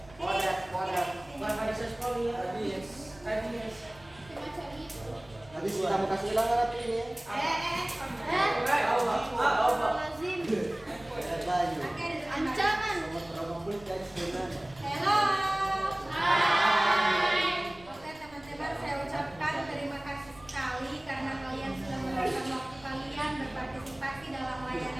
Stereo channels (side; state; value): right; noise; rumble, 24 dB below the sound